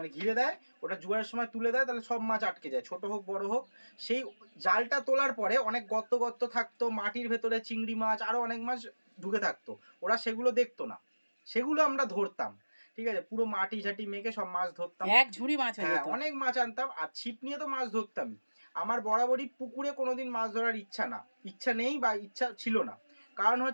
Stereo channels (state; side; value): inverted; both; correlation -1.00